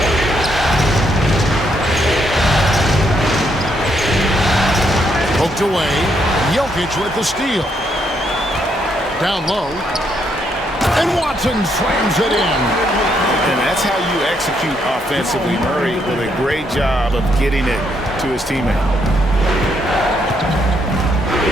Poked away. Jokic with the steal. Down low. And Watson slams it in. And that's how you execute offensively. Murray with a great job of getting it to his teammate.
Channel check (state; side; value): normal; both; correlation 0.75